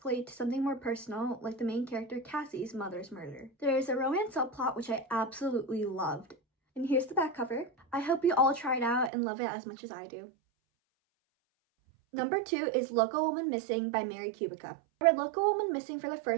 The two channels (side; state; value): left; drops out; at 9.1 s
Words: to something more personal, like the main character Cassie's mother's murder. There is a romance subplot which I absolutely loved. And here's the back cover. I hope you all try it out and love it as much as I do. Number 2 is Local Woman Missing by Mary Kubica. I read Local Woman Missing for the